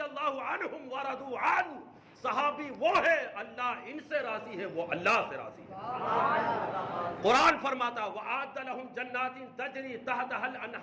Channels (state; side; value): identical; both; correlation 1.00